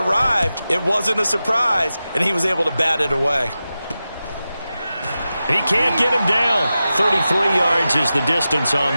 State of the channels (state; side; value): inverted; both; correlation -0.93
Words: it wasn't a surprise, and he was able to bat it away. He can't get him down. 33 yards is the distance on